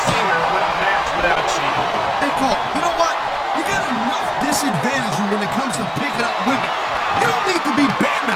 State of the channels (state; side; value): identical; both; correlation 1.00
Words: seen her win a match without cheating. Hey, Cole, you know what? You got enough disadvantage when it comes to picking up women. You don't need to be